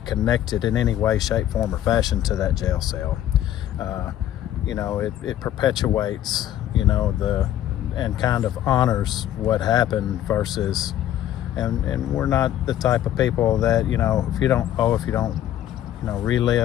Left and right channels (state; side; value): quieter; right; 11.9 dB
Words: connected in any way, shape, form, or fashion to that jail cell. You know, it perpetuates, you know, and kind of honors what happened versus, and we're not the type of people that, you know, if you don't you know,